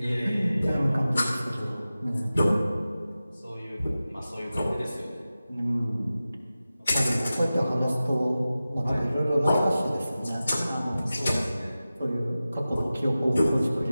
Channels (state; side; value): inverted; both; correlation -0.95